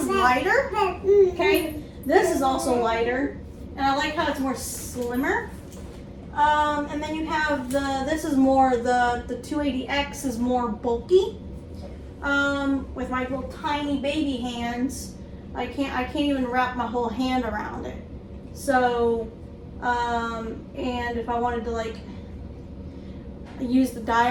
lighter, okay? This is also lighter, and I like how it's more slimmer. And then you have this is more, the 280X is more bulky. With my little tiny baby hands, I can't even wrap my whole hand around it. So, and if I wanted to like use the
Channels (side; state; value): both; identical; correlation 1.00